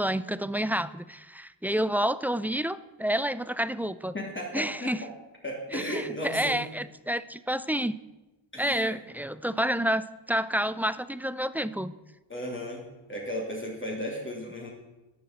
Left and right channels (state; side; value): normal; both; correlation 0.64